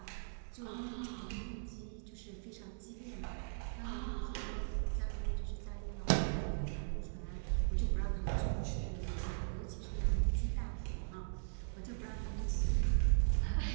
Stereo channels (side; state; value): left; silent; digital silence